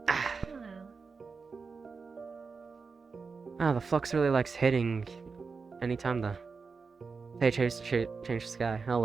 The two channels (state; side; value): quieter; left; 4.8 dB